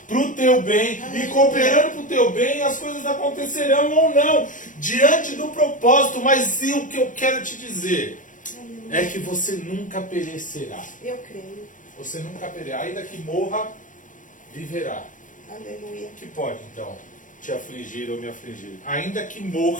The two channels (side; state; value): right; late; 0.38 ms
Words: para o teu bem, e cooperando para o teu bem, as coisas acontecerão ou não, diante do propósito. Mas o que eu quero te dizer é que você nunca perecerá. Eu creio. Você nunca perecerá, ainda que morra, viverá. Aleluia. Que pode, então, te afligir ou me afligir. Ainda que